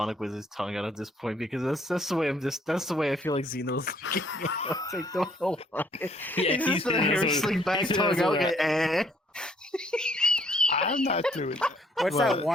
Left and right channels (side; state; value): both; normal; correlation 0.64